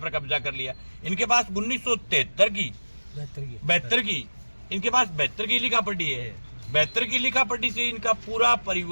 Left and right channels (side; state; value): both; inverted; correlation -1.00